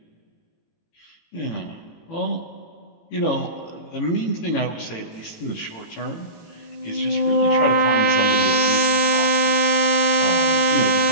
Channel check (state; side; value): late; right; 18 ms